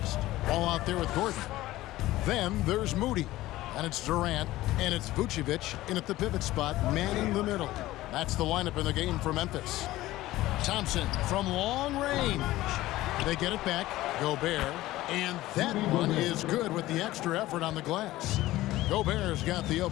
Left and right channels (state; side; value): quieter; right; 16.6 dB